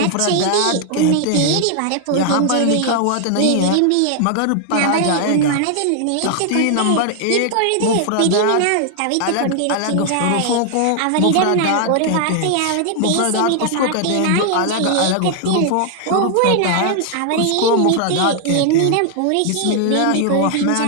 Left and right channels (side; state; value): both; different; correlation 0.00